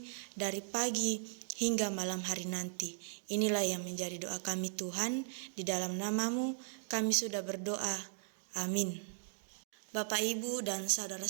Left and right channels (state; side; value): silent; left; digital silence